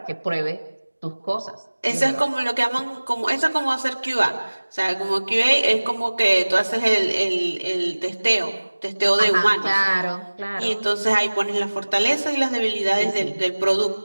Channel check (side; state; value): both; inverted; correlation -1.00